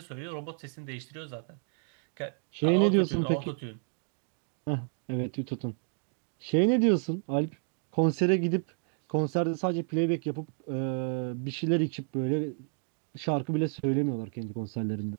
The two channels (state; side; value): silent; left; 57 dB below the other